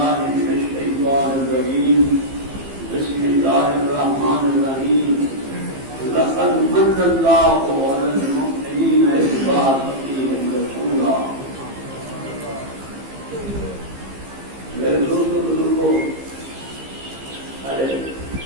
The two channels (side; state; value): left; late; 15 ms